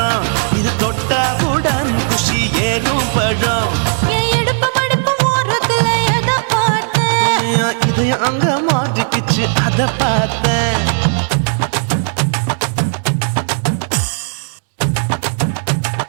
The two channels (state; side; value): silent; left; digital silence